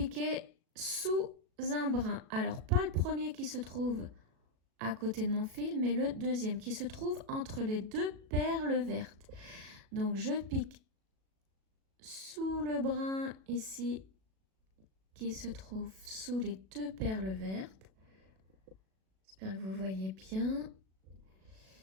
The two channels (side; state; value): left; late; 37 ms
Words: sous un brin. Alors, pas le premier qui se trouve à côté de mon fil, mais le deuxième qui se trouve entre les 2 perles vertes. Donc, je pique sous le brin ici qui se trouve sous les deux perles vertes. J'espère que vous voyez bien.